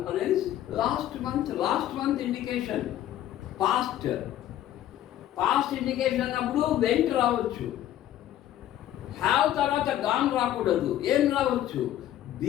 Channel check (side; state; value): right; quieter; 12.4 dB